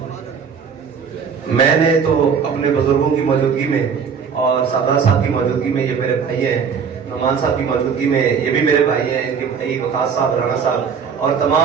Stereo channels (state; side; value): quieter; left; 6.5 dB